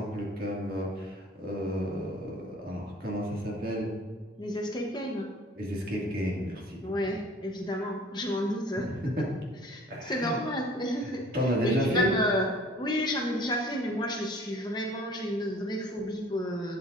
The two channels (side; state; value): both; normal; correlation 0.51